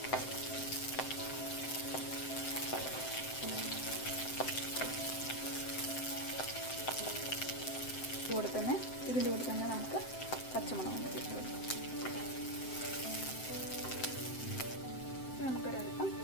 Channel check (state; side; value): late; right; 7.7 ms